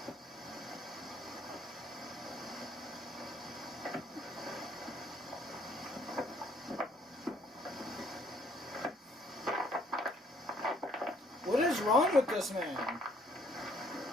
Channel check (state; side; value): normal; both; correlation 0.63